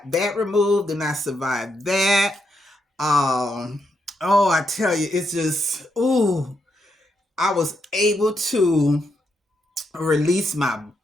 that removed, and I survived that. Oh, I tell you, it's just, ooh, I was able to release my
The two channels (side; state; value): both; normal; correlation 0.81